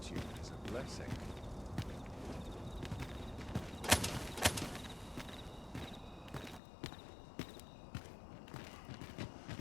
is a blessing.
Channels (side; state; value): right; drops out; at 6.6 s